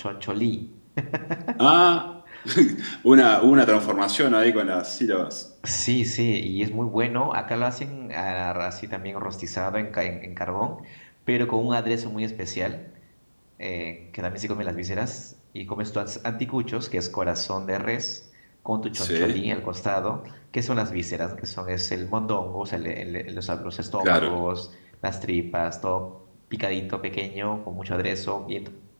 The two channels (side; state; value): both; inverted; correlation -1.00